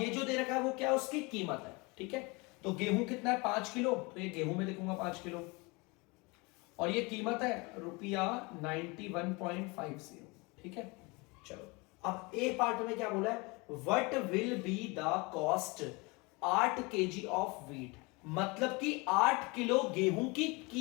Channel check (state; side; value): quieter; right; 26.9 dB